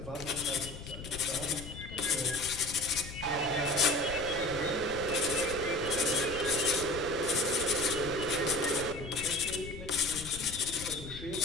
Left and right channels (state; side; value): noise; left; rumble, 11 dB below the sound